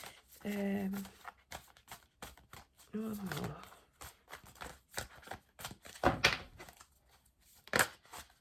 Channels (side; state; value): both; identical; correlation 1.00